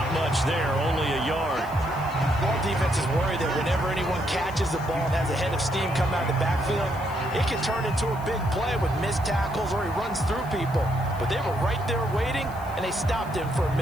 much there, only a yard. All defenses worry that whenever anyone catches the ball and has a head of steam come out of the backfield, it can turn into a big play with missed tackles or he runs through people. But they were right there waiting, and they stopped him for a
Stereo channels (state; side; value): noise; left; hiss, 22 dB below the sound